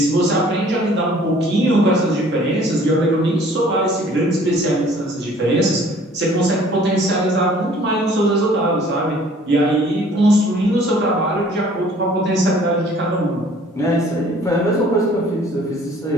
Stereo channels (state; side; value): normal; both; correlation 0.54